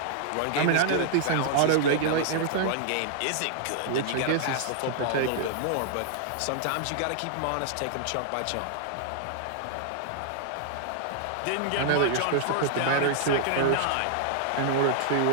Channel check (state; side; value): different; both; correlation -0.01